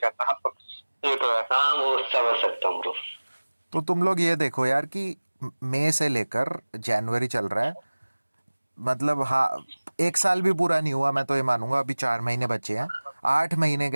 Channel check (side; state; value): both; inverted; correlation -1.00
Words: ये तो है। हाँ वो समझ सकता हूँ ब्रो। तो तुम लोग ये देखो यार कि मई से लेकर जनवरी चल रहा है, मतलब हाँ 1 साल भी पूरा नहीं हुआ, मैं तो ये मानूंगा अभी 4 महीने बचे हैं। 8 महीने